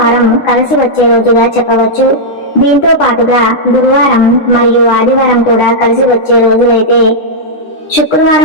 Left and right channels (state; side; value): late; right; 10 ms